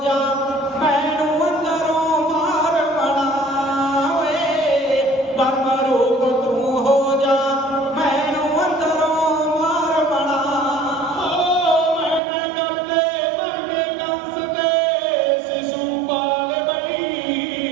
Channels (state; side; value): drops out; left; at 12.2 s